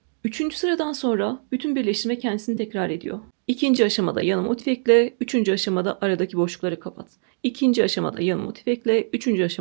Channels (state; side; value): silent; left; digital silence